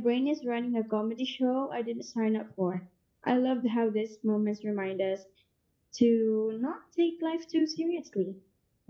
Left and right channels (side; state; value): both; identical; correlation 1.00